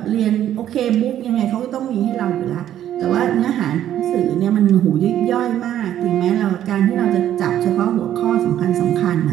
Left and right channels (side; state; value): left; quieter; 11.4 dB